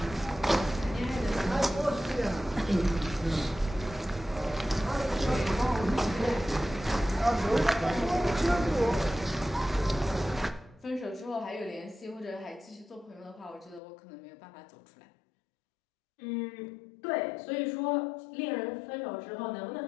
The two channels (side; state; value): right; drops out; at 13.8 s